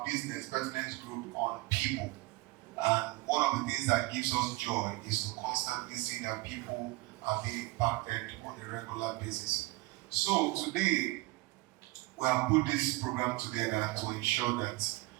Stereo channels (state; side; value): quieter; left; 21.3 dB